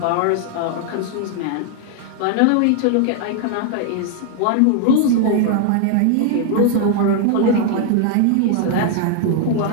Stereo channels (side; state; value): both; different; correlation 0.00